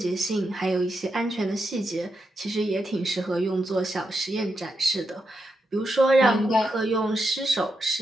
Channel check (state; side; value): normal; both; correlation 0.84